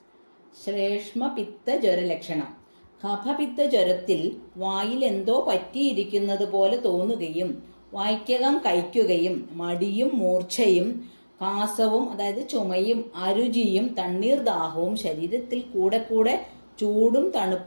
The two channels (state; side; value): inverted; both; correlation -1.00